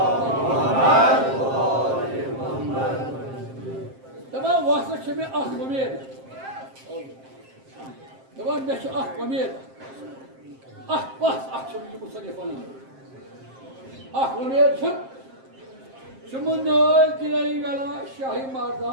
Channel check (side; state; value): left; late; 7.6 ms